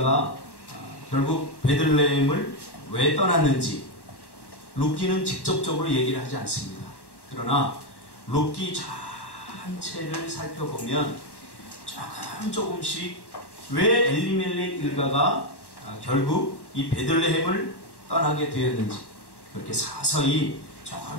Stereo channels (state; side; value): late; right; 1.1 ms